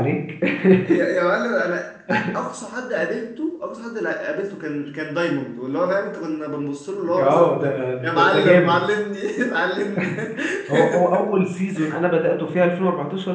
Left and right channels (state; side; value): identical; both; correlation 1.00